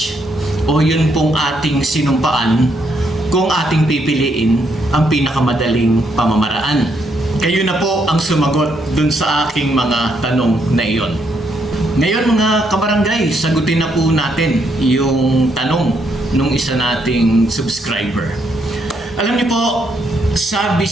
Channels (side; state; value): both; normal; correlation 0.75